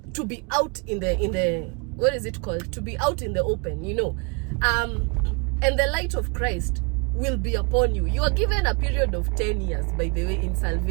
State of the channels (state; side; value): quieter; left; 33.1 dB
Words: to be out in the what is it called? To be out in the open, you know. And the light of Christ will be upon you. You are given a period of 10 years, by the way, in